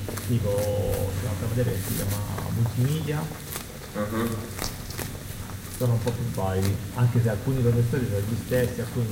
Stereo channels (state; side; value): identical; both; correlation 1.00